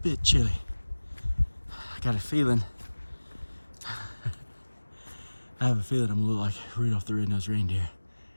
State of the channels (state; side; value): inverted; both; correlation -1.00